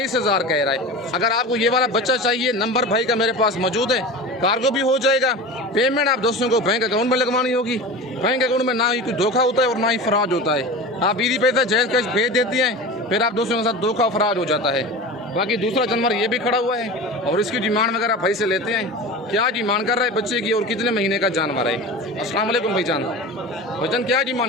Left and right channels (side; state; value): both; normal; correlation 0.31